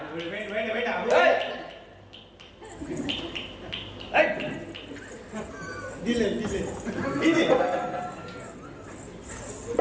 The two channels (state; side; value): identical; both; correlation 1.00